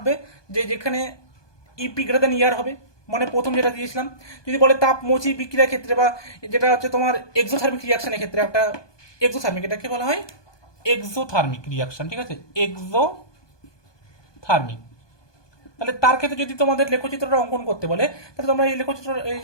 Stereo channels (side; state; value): right; late; 1.2 ms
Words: যে যেখানে ইপি গ্রেটার দেন ইয়ার হবে, মানে প্রথম যেটা দিয়েছিলাম। যদি বলে তাপমোচী বিক্রিয়ার ক্ষেত্রে বা যেটা হচ্ছে তোমার এক্সোথার্মিক রিয়াকশনের ক্ষেত্রে, একটা এক্সোথার্মিক, এটাকে বলা হয় এক্সোথার্মিক রিয়াকশন, ঠিক আছে, এক্সোথার্মিক। তাহলে তার ক্ষেত্রে যদি তোমাদের লেখচিত্রটা অঙ্কন করতে বলে, তাহলে তোমরা এই লেখচিত্র এই